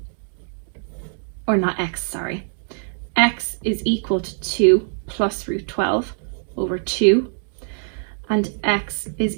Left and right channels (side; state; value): left; silent; digital silence